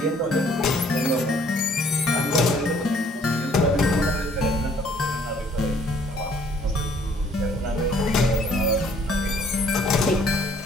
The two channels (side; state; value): both; normal; correlation 0.60